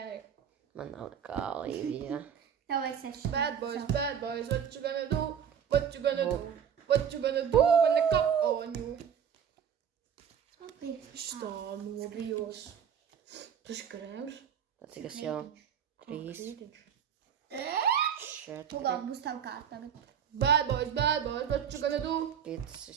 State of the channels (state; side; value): quieter; left; 8.2 dB